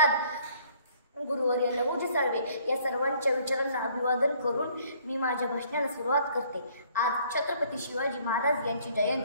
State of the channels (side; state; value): both; inverted; correlation -0.60